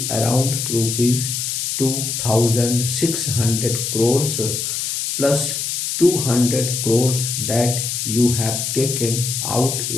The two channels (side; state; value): left; noise; hiss, 2 dB below the sound